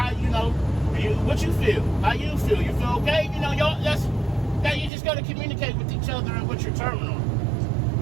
you know, what you feel? How you feel? You feel okay? You know, y'all. That you just gotta communicate with each other and with your terminal.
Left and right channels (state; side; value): drops out; left; at 4.9 s